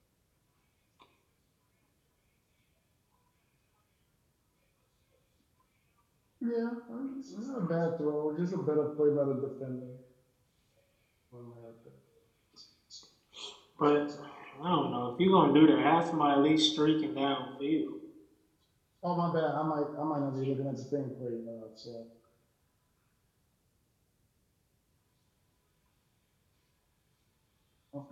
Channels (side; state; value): both; identical; correlation 1.00